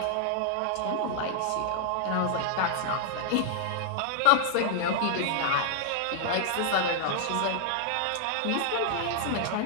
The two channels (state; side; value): different; both; correlation 0.00